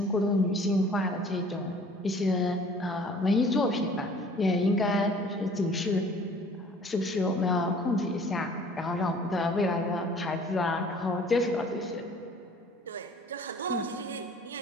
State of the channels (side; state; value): both; normal; correlation 0.51